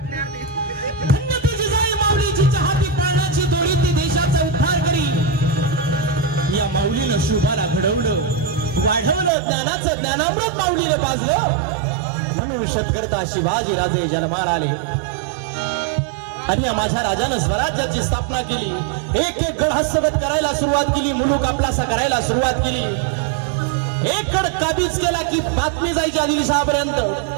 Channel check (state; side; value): drops out; left; at 9.3 s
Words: धन्य ती जिजाई माऊली जिच्या हाती पाळण्याची दोरी ती देशाचा उद्धार करी। या माऊलीनं शुभाला घडवलं वाढवलं ज्ञानाचं ज्ञानामृत माऊलीनं पाजलं म्हणून शतकर्ता शिवाजी राजे जन्माला आले आणि या माझ्या राजानं स्वराज्याची स्थापना केली। एक एक गड हस्तगत करायला सुरुवात केली, मुलूक आपलासा करायला सुरुवात केली। एक गड काबीज केला की बातमी जायची आदिलशहापर्यंत।